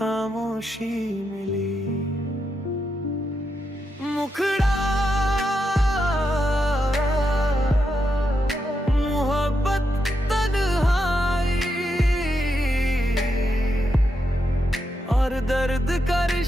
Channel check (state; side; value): normal; both; correlation 0.84